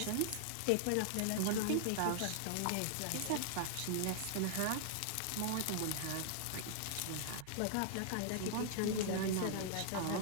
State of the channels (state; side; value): different; both; correlation -0.01